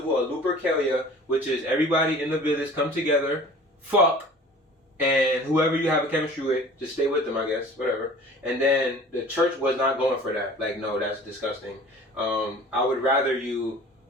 of Lupercalia, which is everybody in the village come together, fuck, and whoever you have a chemistry with, just stay with them, I guess, whatever. And then the church was not going for that. Like, no, that's disgusting. I would rather you,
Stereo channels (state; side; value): normal; both; correlation 0.45